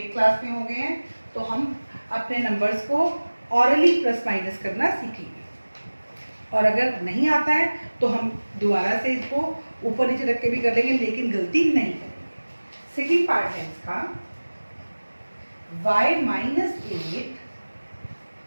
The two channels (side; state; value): both; inverted; correlation -1.00